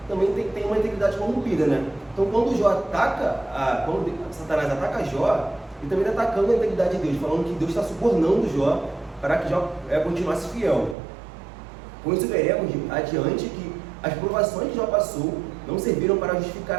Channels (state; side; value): drops out; left; at 11.0 s